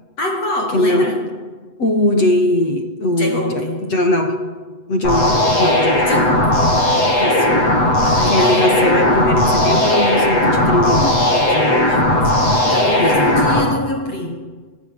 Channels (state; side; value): late; right; 8.0 ms